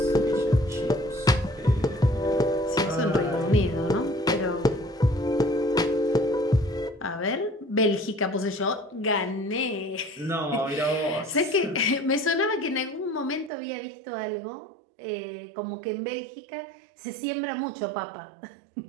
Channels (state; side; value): drops out; left; at 13.5 s